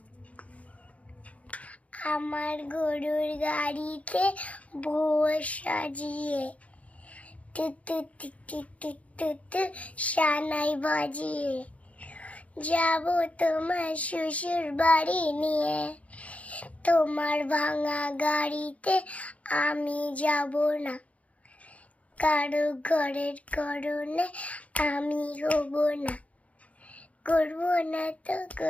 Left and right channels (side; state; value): right; late; 0.066 ms